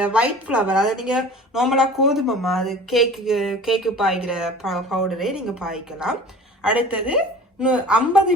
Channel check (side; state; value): both; normal; correlation 0.42